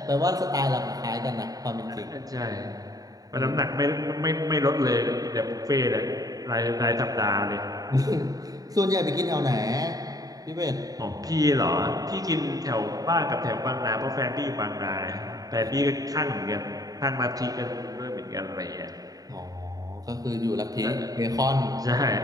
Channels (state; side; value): late; left; 0.18 ms